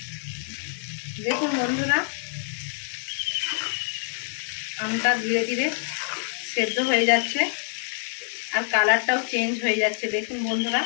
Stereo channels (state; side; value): silent; right; 61 dB below the other